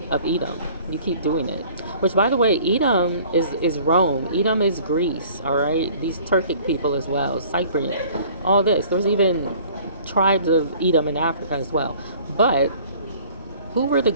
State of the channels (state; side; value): inverted; both; correlation -0.51